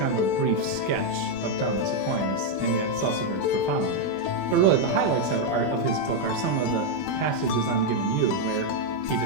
of a brief sketch of Thomas Aquinas, and yet it's also very profound. But really, the highlights of his book are some of the passages I'm giving you, where he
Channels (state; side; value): late; right; 20 ms